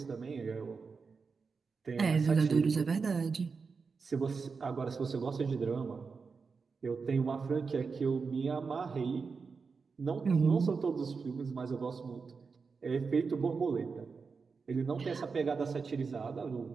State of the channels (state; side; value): quieter; left; 5.0 dB